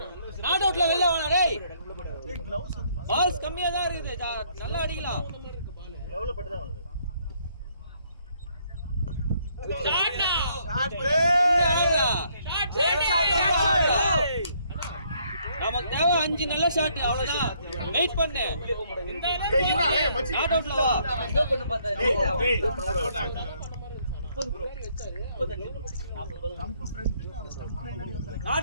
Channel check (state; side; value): inverted; both; correlation -0.68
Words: நாட் அவுட்ல வெளிய வாடா டேய். பால்ஸ் கம்மியா தான் இருக்குது. நல்லா அடிக்கலாம். லெவல்ல பட்டு தான் வருது. Shot play. நமக்கு தேவை 5 நல்ல ஷாட் அவ்வளவுதான். வெயிட் பண்ணு. ஏய் இறா ஏய் மச்சி. நாட் அவுட்ல வா. ஸ்லோ பண்ணு பார்த்தா. ஏய் 30 ப்ரோ. 35 ஸ்டம்ப் ஃப்ரண்ட் அந்த ஸ்டம்ப் ஃப்ரண்ட் வந்து.